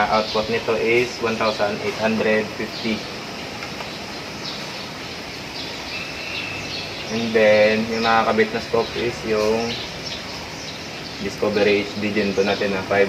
nito is 1,850. And then yung nakakabit na scope is yung Discovery HD Gen 2 natin na 5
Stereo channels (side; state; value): both; identical; correlation 1.00